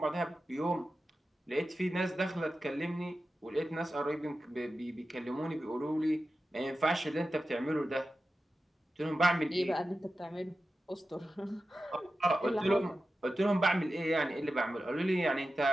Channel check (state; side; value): normal; both; correlation 0.93